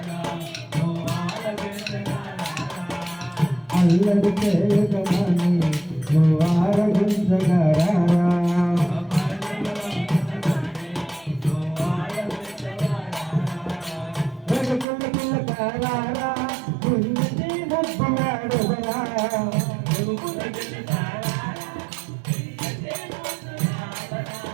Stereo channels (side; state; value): left; drops out; at 14.9 s